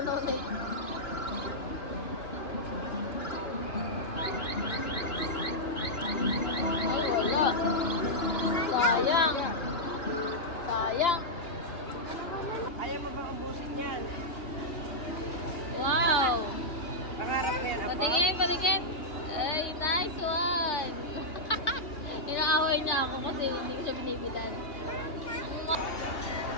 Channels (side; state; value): right; late; 3.1 ms